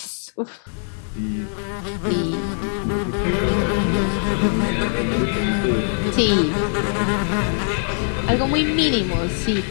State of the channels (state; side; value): silent; right; 60 dB below the other